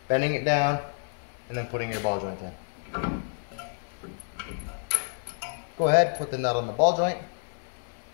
bending it down, and then putting your ball joint in. Go ahead, put the nut on the ball joint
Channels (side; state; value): right; silent; digital silence